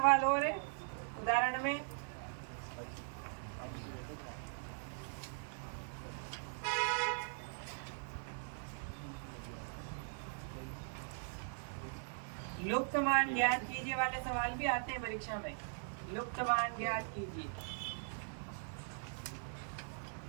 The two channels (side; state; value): left; silent; digital silence